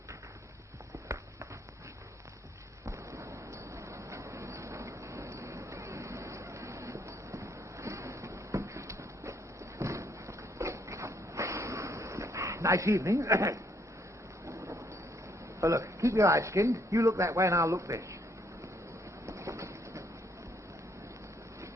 Nice evening. Oh, look, keep your eyes skinned. You look that way and I'll look this.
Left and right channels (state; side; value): normal; both; correlation 0.69